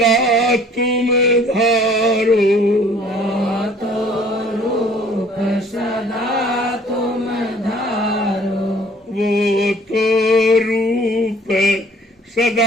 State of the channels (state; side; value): normal; both; correlation 0.55